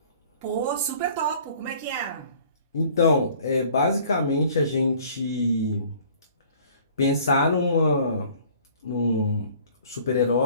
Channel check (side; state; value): both; inverted; correlation -0.52